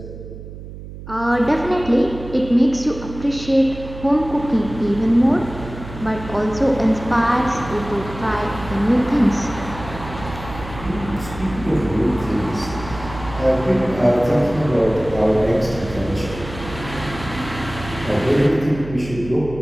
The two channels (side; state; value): right; noise; hum, 13 dB below the sound